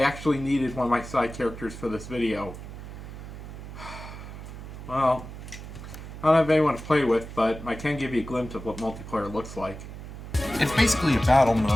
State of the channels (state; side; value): noise; right; hum, 11 dB below the sound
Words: actually needed one of my side characters for this video. Well, I don't have anyone to play with, but I can give you a glimpse of what multiplayer looks like. It's basically a battle